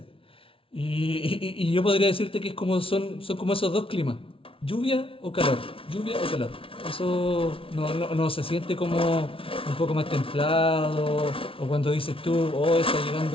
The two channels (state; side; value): late; right; 0.26 ms